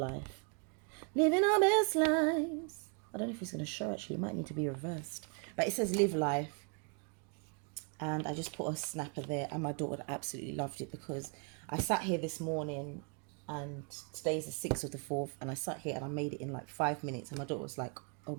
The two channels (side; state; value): left; quieter; 35.9 dB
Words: living our best lives. I don't know if it's going to show, actually, it might need to be reversed, but it says live life. And I just put a snapper there, and my daughter absolutely loved it, because I sat here this morning, and today's the 6th of the 4th, and I sat here and I made it in like 5 minutes, and my daughter was like, oh